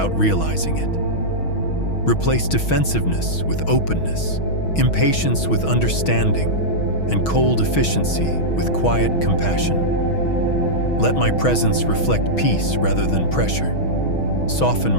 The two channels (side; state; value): right; late; 6.2 ms